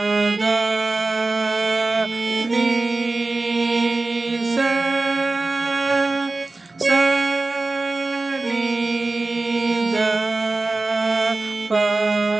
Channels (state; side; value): quieter; left; 3.2 dB